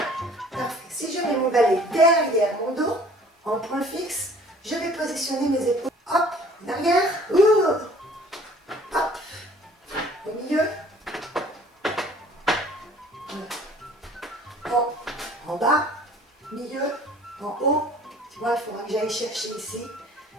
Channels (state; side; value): normal; both; correlation 0.52